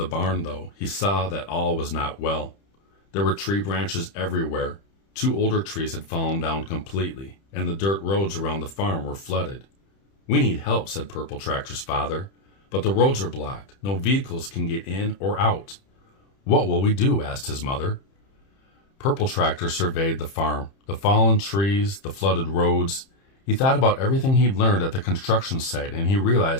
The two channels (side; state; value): right; late; 30 ms